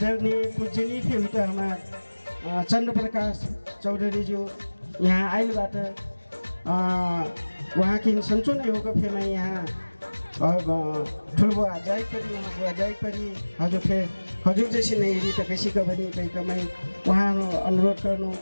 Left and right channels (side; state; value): both; inverted; correlation -1.00